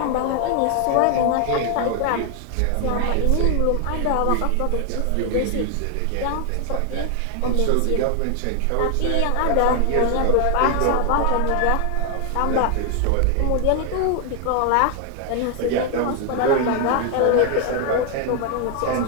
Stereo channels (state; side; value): different; both; correlation 0.00